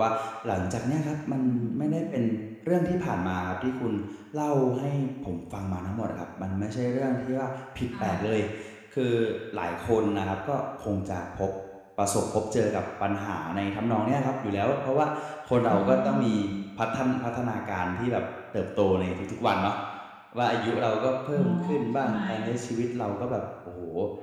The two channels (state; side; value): identical; both; correlation 1.00